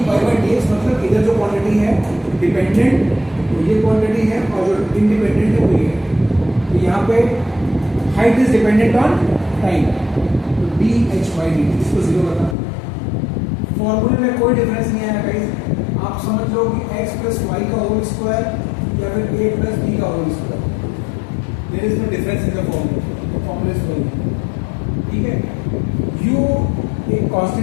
by dx मतलब इधर जो क्वांटिटी है डिपेंडेंट वो ये क्वांटिटी है, और जो इंडिपेंडेंट है वो ये है। तो यहाँ पे height is dependent on time, तो dh by dt इसको 0 बता। फॉर्मूले में कोई डिफरेंस नहीं आया गाइस, आप समझ लो कि x प्लस वाई का होल स्क्वायर या फिर a प्लस b का whole square, there is no difference in the formula is वही, ठीक है? u एक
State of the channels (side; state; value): right; drops out; at 12.6 s